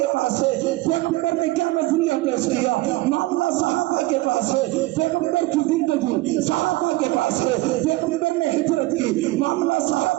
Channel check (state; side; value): quieter; left; 19.5 dB